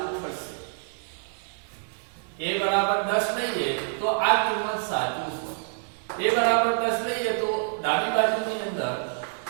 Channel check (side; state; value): left; silent; digital silence